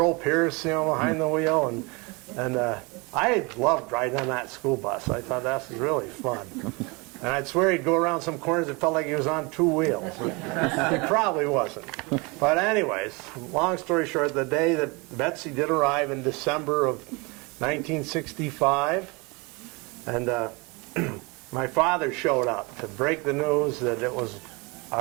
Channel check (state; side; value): quieter; left; 27.9 dB